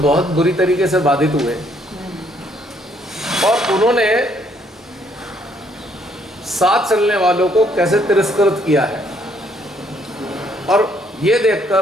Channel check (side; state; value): both; normal; correlation 0.67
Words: बुरी तरीके से बाधित हुए और उन्होंने साथ चलने वालों को कैसे तिरस्कृत किया है। और ये